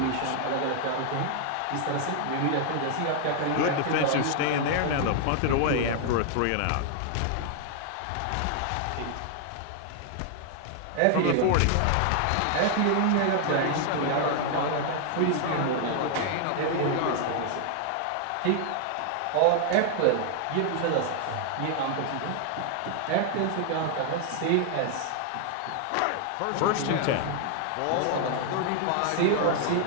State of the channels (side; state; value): both; different; correlation 0.00